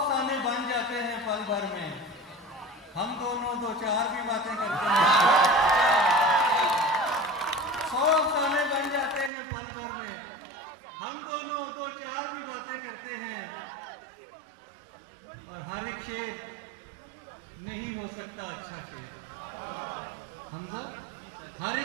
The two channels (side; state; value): left; drops out; at 9.3 s